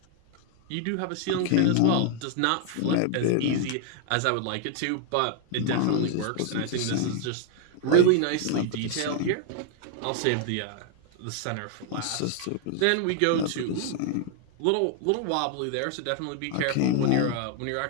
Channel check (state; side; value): different; both; correlation 0.00